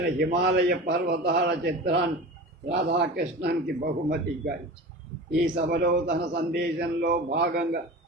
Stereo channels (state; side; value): normal; both; correlation 0.33